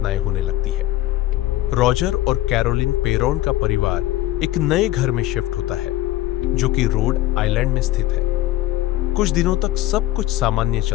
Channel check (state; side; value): quieter; right; 15.4 dB